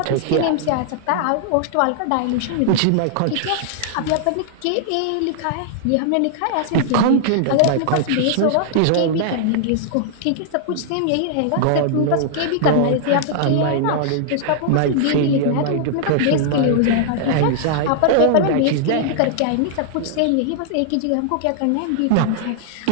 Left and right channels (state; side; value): different; both; correlation -0.01